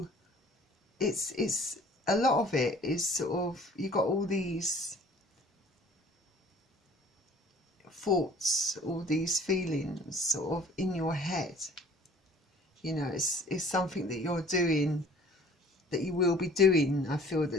it's a lot of it is sort of, you got all these thoughts, all these feelings sort of in your head. You know, it's something that you're doing, that you will be doing. I feel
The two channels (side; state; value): both; normal; correlation 0.51